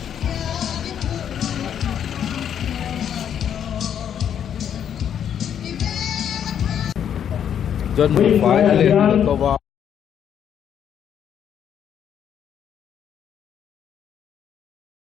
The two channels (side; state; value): right; quieter; 9.0 dB